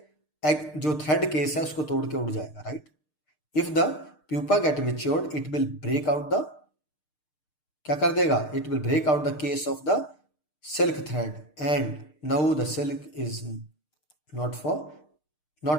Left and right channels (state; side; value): late; right; 6.6 ms